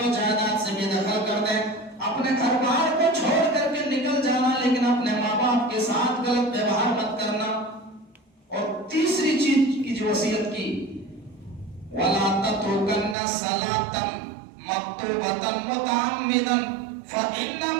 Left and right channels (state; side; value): drops out; left; at 13.2 s